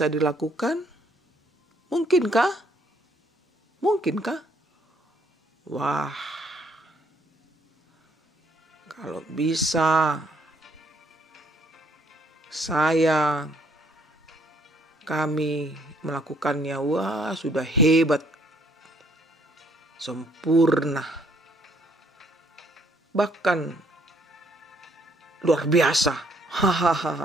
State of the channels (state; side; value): normal; both; correlation 0.66